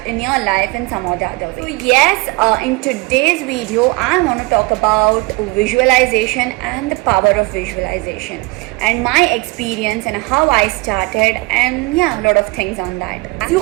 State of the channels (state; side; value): quieter; left; 25.0 dB